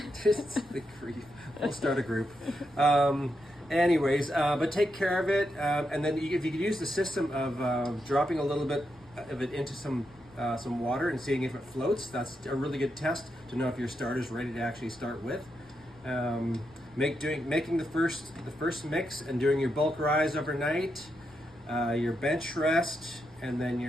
Just the grief. We'll start a group. But take care of it, and then if you could use the system of dropping a little bit of it into some water and seeing if it floats. That's a really good test to know if your starter's ready to actually start with. Making the first mix and doing your bulk rise overnight, your bench rest, and then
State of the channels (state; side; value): noise; left; rumble, 26 dB below the sound